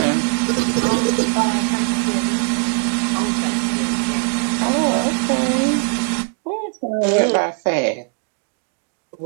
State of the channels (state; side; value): quieter; left; 38.0 dB